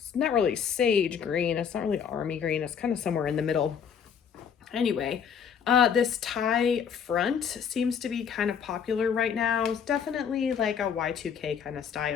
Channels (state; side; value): quieter; right; 7.4 dB